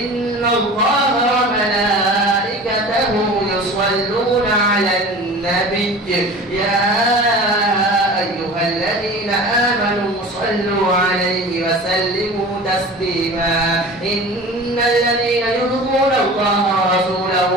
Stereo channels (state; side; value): normal; both; correlation 0.38